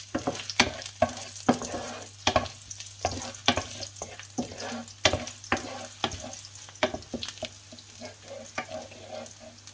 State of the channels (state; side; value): identical; both; correlation 1.00